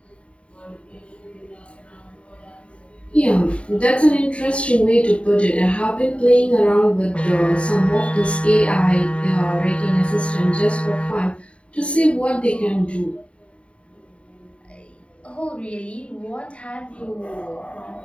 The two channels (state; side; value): late; right; 0.061 ms